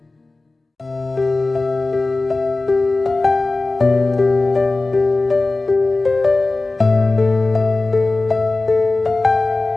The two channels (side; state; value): right; quieter; 3.2 dB